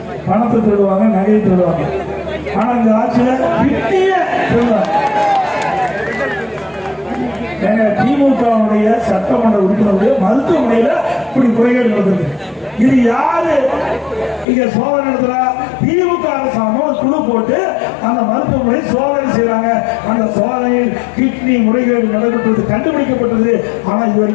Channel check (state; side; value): drops out; right; at 14.5 s